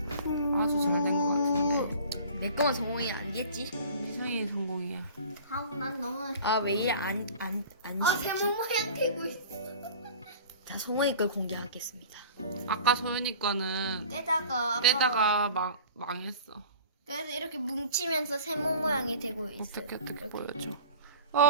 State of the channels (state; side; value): inverted; both; correlation -0.42